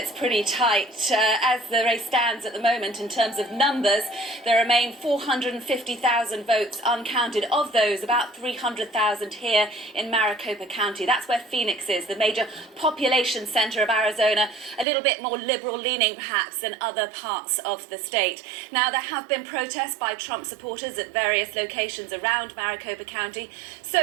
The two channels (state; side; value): drops out; left; at 14.9 s